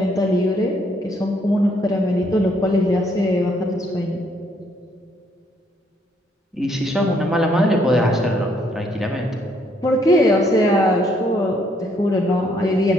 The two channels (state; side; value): normal; both; correlation 0.69